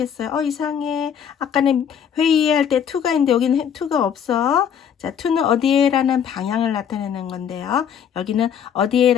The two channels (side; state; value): right; quieter; 8.3 dB